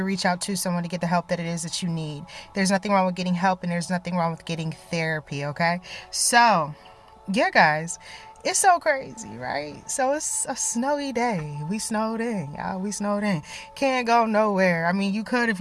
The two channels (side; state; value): both; identical; correlation 1.00